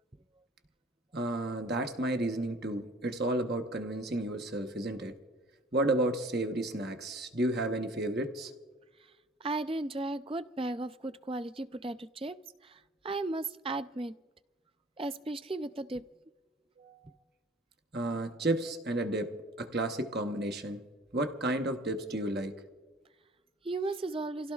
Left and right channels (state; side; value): normal; both; correlation 0.50